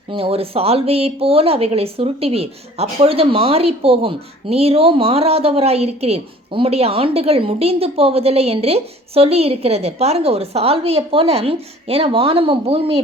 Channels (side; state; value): both; normal; correlation 0.50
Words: ஒரு சால்வையை போல அவைகளை சுருட்டுவீர், அப்பொழுது மாறி போகும், நீரோ மாறாதவராய் இருக்கிறீர், உம்முடைய ஆண்டுகள் முடிந்து போவதில்லை என்று சொல்லி இருக்கிறது. பாருங்க, ஒரு சால்வையை போல, ஏன்னா வானமும் பூமியை